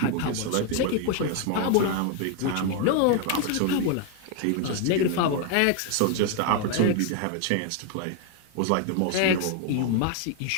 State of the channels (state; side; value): different; both; correlation 0.01